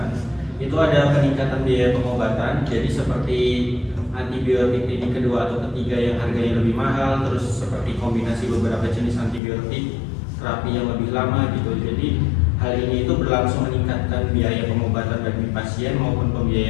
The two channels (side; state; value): right; drops out; at 9.4 s